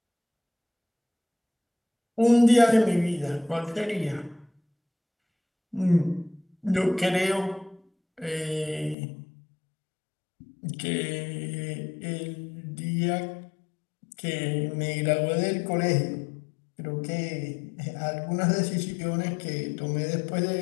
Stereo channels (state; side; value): drops out; right; at 9.0 s